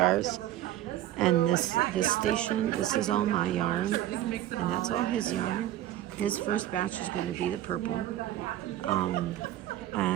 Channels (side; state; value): left; quieter; 13.4 dB